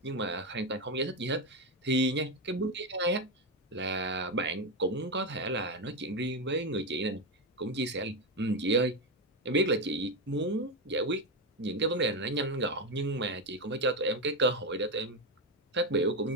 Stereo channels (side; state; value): both; normal; correlation 0.10